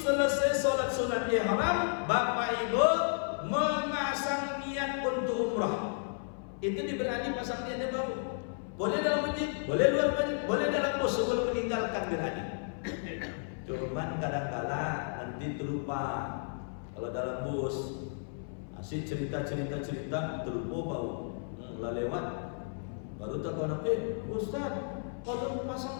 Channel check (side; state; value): right; silent; 56 dB below the other